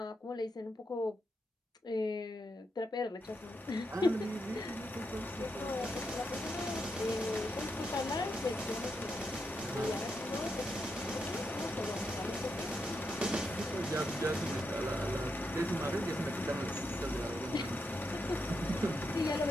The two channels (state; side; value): normal; both; correlation 0.83